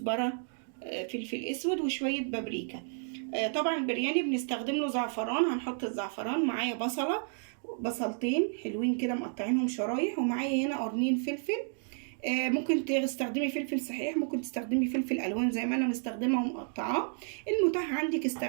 فلفل اسود وشويه بابريكا. طبعا البرياني بنستخدم له زعفران، هنحط الزعفران. معايا بصلتين حلوين كده مقطعينهم شرايح، ومعايا هنا قرنين فلفل. ممكن تستخدمي فلفل صحيح، ممكن تستخدمي فلفل الوان زي ما انا مستخدمه ومقطعاه. المتاح عندك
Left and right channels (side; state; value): left; silent; 57 dB below the other